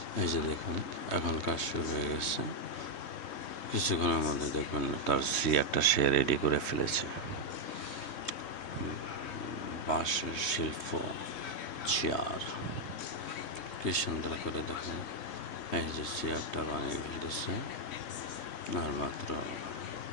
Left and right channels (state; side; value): late; right; 3.2 ms